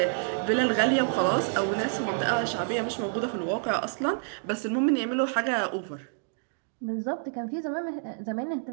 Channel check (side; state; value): left; silent; digital silence